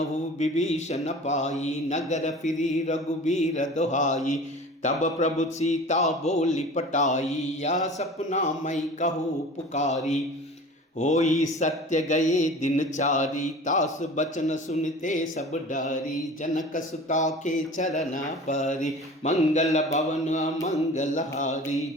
विभीषण पाई नगर फिरी रघुबीर दोहाई तब प्रभु सीता बोली पटाई या सपना मई कहू पुकारी होई सत्य गए दिन चारी तास बचन सुनते सब डारी जनक सुता के चरण परी मंगल भवन मंगलहारी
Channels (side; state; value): both; normal; correlation 0.40